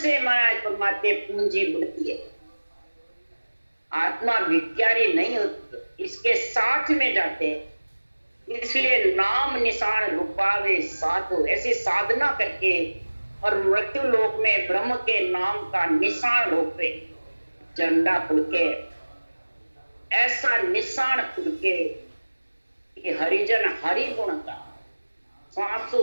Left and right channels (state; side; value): inverted; both; correlation -1.00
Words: महाराज परमात्मा पूंजी बढ़ती है, आत्मा भिखारी नहीं होती, इसके साथ में जाते हैं। इसलिए नाम निशान रूपावे साधु, ऐसी साधना करके और मृत्यु लोक में ब्रह्म के नाम का निशान रूपे झंडा फुड़के, ऐसा निशान फुड़के कि हरिजन हरि गुण का